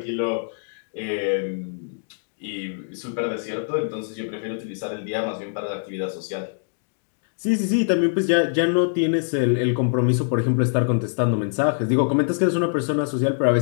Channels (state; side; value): silent; right; digital silence